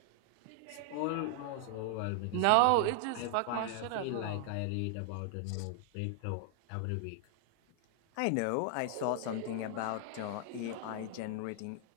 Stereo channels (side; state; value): both; different; correlation 0.00